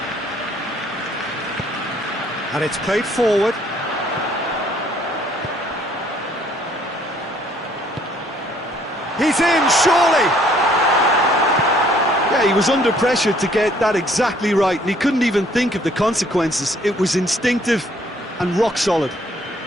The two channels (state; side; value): normal; both; correlation 0.62